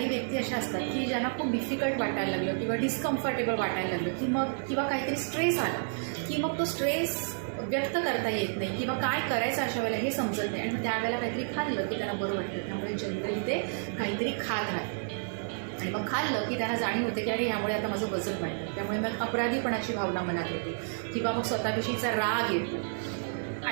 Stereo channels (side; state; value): left; silent; digital silence